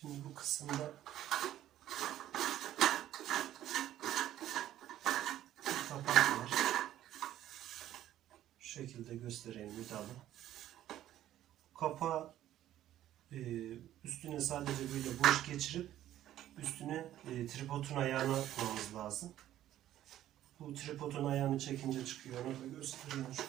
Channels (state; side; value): quieter; left; 12.7 dB